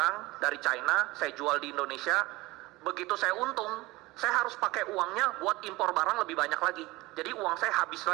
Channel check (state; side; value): quieter; left; 20.6 dB